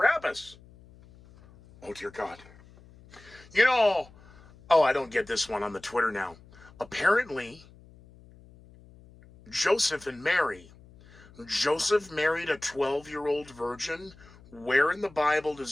Oh, dear God. I don't get this one on the Twitter now. Apparently, Joseph and Mary. Joseph married a 12-year-old virgin. Where in the Bible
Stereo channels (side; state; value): left; noise; hum, 24 dB below the sound